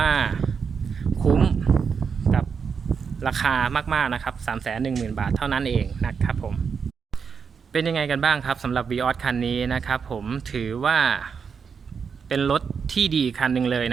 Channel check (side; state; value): left; quieter; 6.2 dB